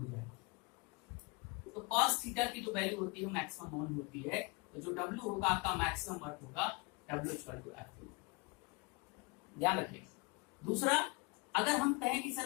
जाए तो कॉस थीटा की जो वैल्यू होती है मैक्सिमम वन होती है। तो जो W होगा आपका मैक्सिमम वर्क होगा W=F2। ध्यान रखिए। दूसरा, अगर हम कहें कि सर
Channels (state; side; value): quieter; right; 28.8 dB